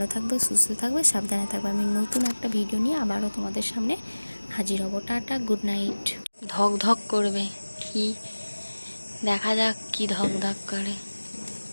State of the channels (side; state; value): both; inverted; correlation -1.00